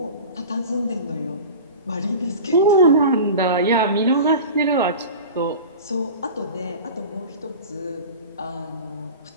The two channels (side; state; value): both; inverted; correlation -0.34